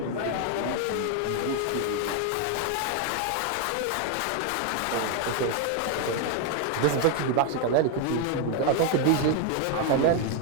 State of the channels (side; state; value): both; different; correlation 0.01